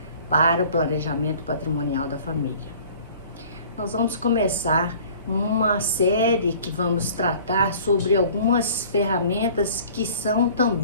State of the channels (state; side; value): inverted; both; correlation -0.49